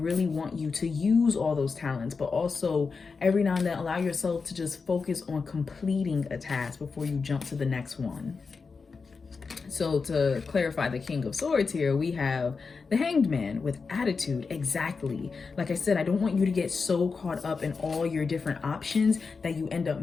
want you to use all those talents, but also every now and then allow yourself to just focus on completing a task before you jump to the next one. So to clarify the King of Swords here, we have the Hanged Man with attitude. Exactly. Like I said, I don't want you to get so caught up in all your different options that you end up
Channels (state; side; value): quieter; right; 4.8 dB